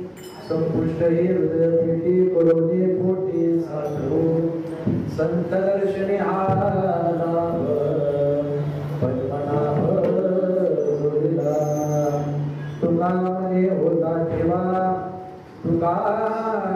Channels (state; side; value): identical; both; correlation 1.00